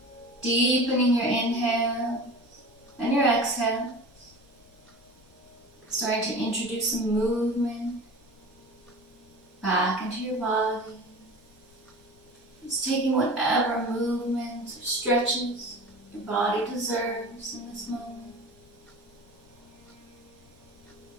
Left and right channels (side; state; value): left; noise; rumble, 28 dB below the sound